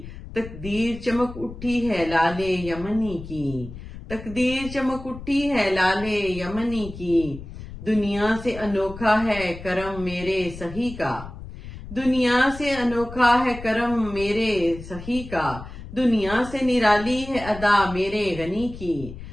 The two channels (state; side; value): noise; left; rumble, 13 dB below the sound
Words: تقدیر چمک اٹھی ہے لال یمنی کی، تقدیر چمک اٹھی ہے لال یمنی کی۔ دنیا سے انوکھا ہے کرم میرے سہی کا، دنیا سے انوکھا ہے کرم میرے سہی کا، دنیا سے نرالی ہے ادا میرے غنی کی،